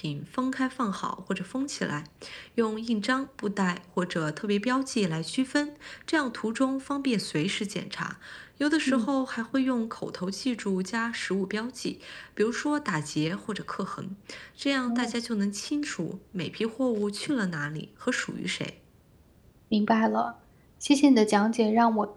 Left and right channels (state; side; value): identical; both; correlation 1.00